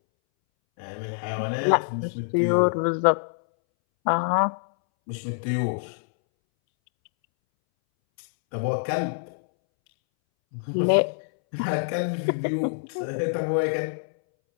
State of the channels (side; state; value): right; silent; 61 dB below the other